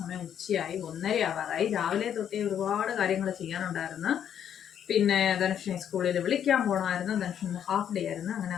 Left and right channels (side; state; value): right; quieter; 9.2 dB